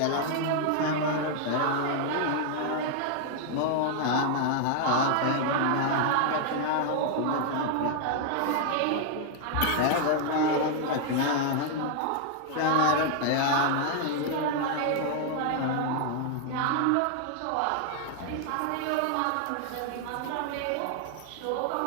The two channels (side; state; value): both; different; correlation 0.00